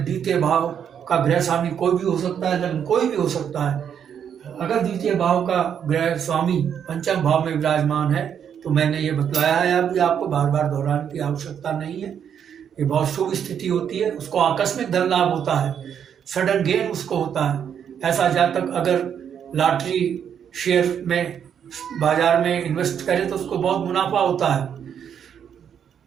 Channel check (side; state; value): left; quieter; 8.3 dB